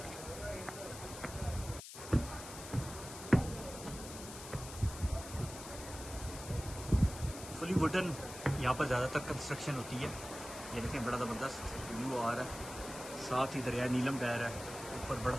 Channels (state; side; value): noise; left; hiss, 12 dB below the sound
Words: फुली वुडन यहाँ पर ज़्यादातर कंस्ट्रक्शन होती है। ये देखें बड़ा ज़बरदस्त व्यू आ रहा है। साथ ही दरिया नीलम बह रहा है। ऊपर बड़ा